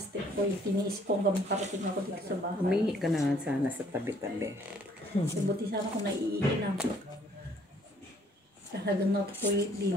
ko. Tiniis ko hanggang makarating ako dito sa bahay. Humingi ka na nga sana sa tabi-tabi. Buti sana kung naiinom. Talagang na-toilet din.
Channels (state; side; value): normal; both; correlation 0.62